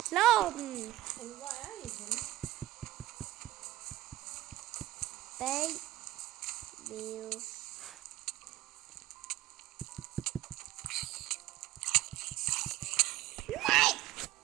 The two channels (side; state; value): left; quieter; 15.4 dB